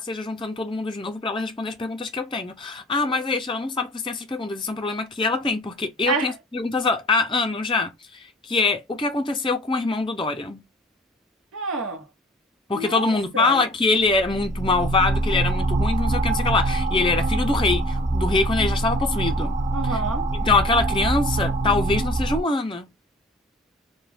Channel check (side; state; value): both; normal; correlation 0.48